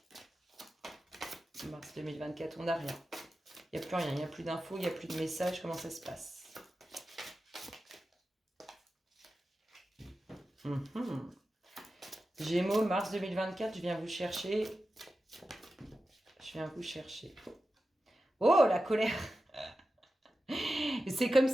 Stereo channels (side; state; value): both; normal; correlation 0.92